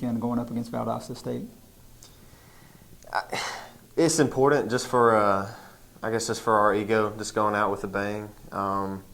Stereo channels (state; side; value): identical; both; correlation 1.00